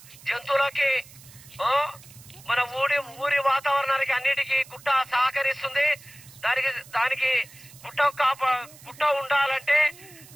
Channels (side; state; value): right; noise; hiss, 21 dB below the sound